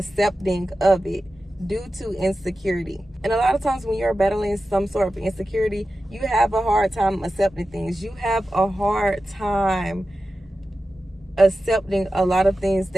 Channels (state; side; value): normal; both; correlation 0.93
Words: of it due to insecurity. And a lot of times when you're battling some sort of insecurity, you have a hard time accepting things. You have a hard time accepting a lot of things